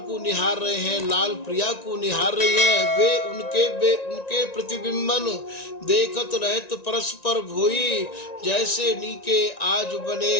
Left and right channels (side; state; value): right; late; 1.9 ms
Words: को निहार रहे हैं, लाल प्रिया को निहार रही हैं। वे उनके प्रतिबिंबन देखत रहत परस्पर भोई, जैसे नीके आज बने